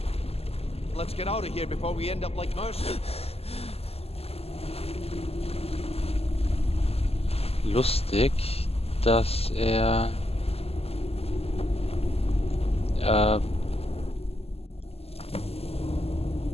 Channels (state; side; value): late; right; 0.29 ms